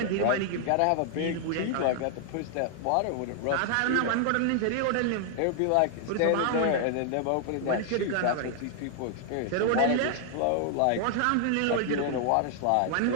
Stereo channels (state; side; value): different; both; correlation 0.00